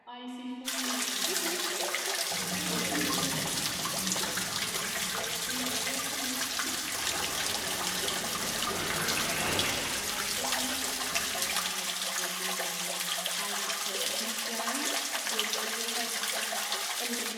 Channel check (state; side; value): identical; both; correlation 1.00